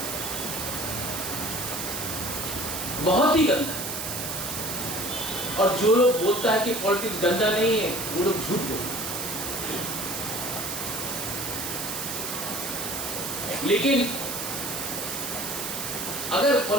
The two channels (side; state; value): right; noise; hiss, 4 dB below the sound